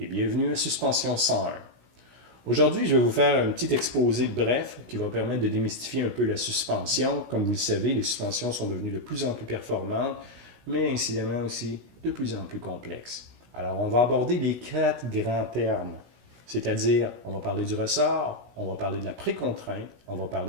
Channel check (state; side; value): late; left; 16 ms